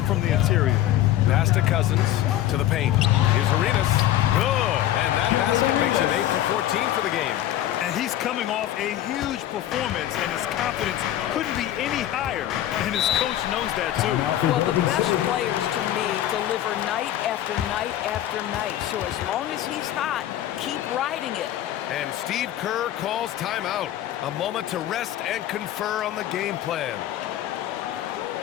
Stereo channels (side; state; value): right; quieter; 12.7 dB